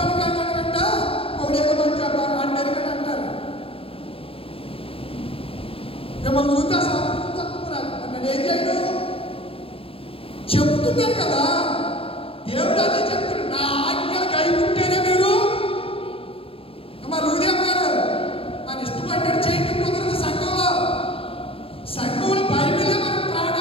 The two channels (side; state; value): right; late; 0.27 ms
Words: కానీ అంట ఒకడేదో మంచి అన్నరికని అంటారు. మిమ్మల్ని చూస్తే సాధించుకుంటున్నారు అన్నది ఏం చేయడం చెప్తున్నారు కదా. దేవుడు అదే చెప్తాడు, నా ఆజ్ఞలు కైకుంటేనే మీరు మా లూదేవ్ గారు మన ఇష్టపడ్డాడు చేయటం కుదరదు. సంఘంలో బైబిలే మనం